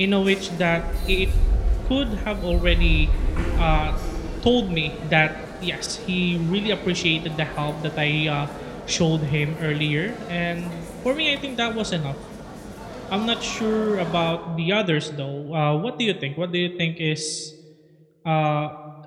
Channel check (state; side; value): identical; both; correlation 1.00